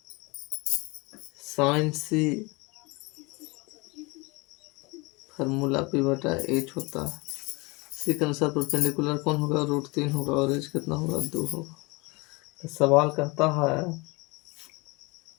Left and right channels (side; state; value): right; quieter; 26.1 dB